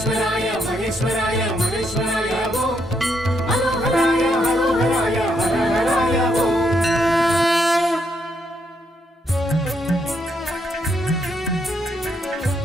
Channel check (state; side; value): normal; both; correlation 0.76